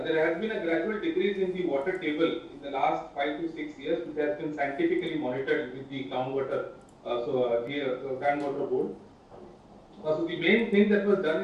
has been a gradual decrease in the water table in the last 5 to 6 years, which has been scientifically monitored with the groundwater, groundwater board. So the main thing that was done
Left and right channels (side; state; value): both; identical; correlation 1.00